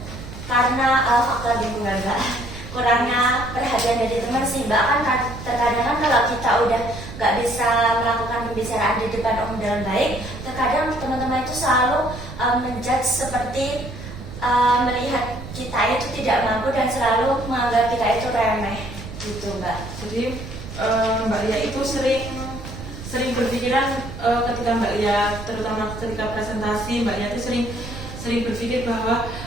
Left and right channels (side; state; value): right; noise; rumble, 11 dB below the sound